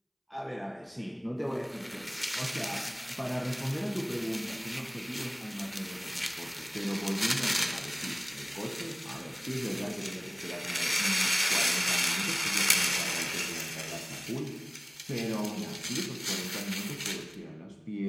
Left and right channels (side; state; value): both; identical; correlation 1.00